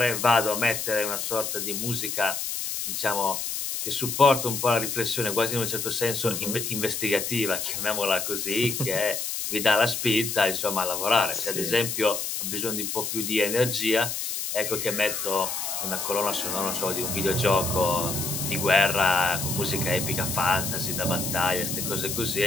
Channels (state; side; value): noise; left; hiss, 3 dB below the sound